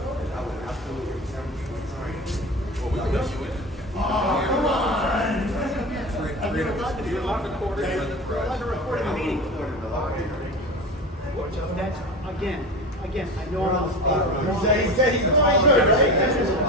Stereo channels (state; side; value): normal; both; correlation 0.28